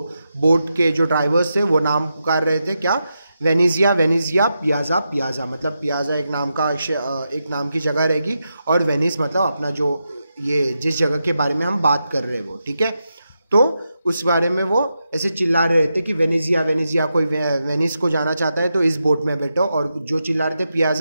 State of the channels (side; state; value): both; inverted; correlation -0.87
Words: बोट के जो ड्राइवर्स थे वो नाम पुकार रहे थे क्या, वेनेजिया, वेनेजिया, पियाजा, पियाजा मतलब पियाजा एक नाम की जगह रहेगी, और वेनिस मतलब अपना जो ये जिस जगह के बारे में हम बात कर रहे हैं वो, ठीक है। तो उस बारे में वो ऐसे चिल्ला रहे थे कि वेनेजिया, वेनेजिया, कोई वेनिस को जाना चाहता है तो इस बोट में बैठो, और जो चिल्ला रहे थे